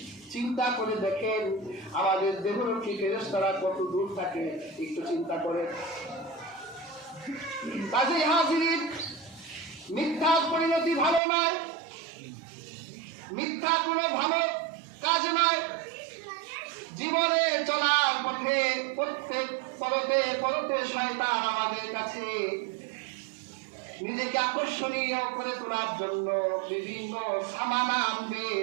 চিন্তা করে দেখেন আমাদের দেহরক্ষী ফেরেশতারা কত দূর থাকে, একটু চিন্তা করে। কাজেই হাজির, মিথ্যার পরিণতি ভালো নয়, মিথ্যা কোনো ভালো কাজ নয়। জীবনে চলার পথে প্রত্যেক পরতে পরতে শয়তান আমাদের কাছে নিজেকে আকর্ষণীয় করে তোলার জন্য বিভিন্ন সামানা আনবে,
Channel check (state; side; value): drops out; left; at 11.2 s